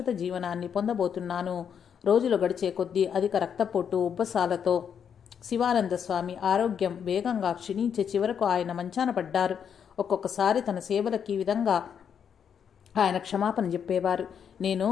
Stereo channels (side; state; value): right; quieter; 7.7 dB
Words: జీవనాన్ని పొందబోతున్నాను. రోజులు గడిచే కొద్దీ అధిక రక్తపోటు ఉబ్బసాలతో శివానంద స్వామి ఆరోగ్యం వేగంగా క్షీణించే చివరకు ఆయన మంచాన పడ్డారు. ఒక్కొక్కసారి తన సేవలకి ఈ విధంగా ఆయన క్షమాపణ చెప్పేవారు. నేను